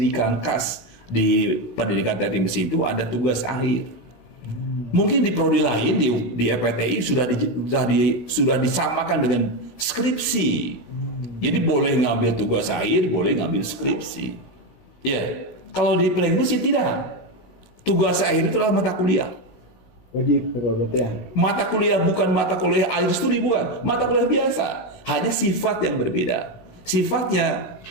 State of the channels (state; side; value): late; right; 16 ms